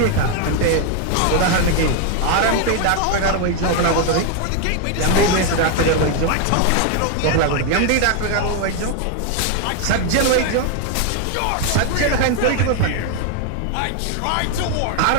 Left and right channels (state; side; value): different; both; correlation 0.01